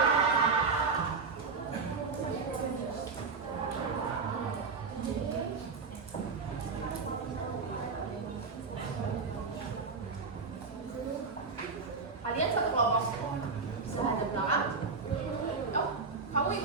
Kalian satu kelompok. Bisa ada belakang. Oh, kamu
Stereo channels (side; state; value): left; quieter; 4.6 dB